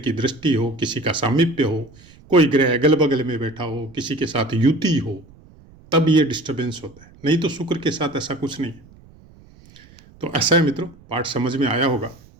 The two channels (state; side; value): noise; right; rumble, 25 dB below the sound